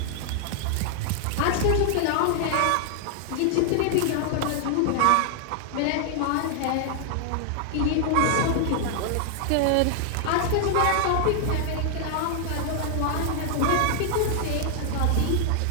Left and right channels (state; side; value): different; both; correlation 0.00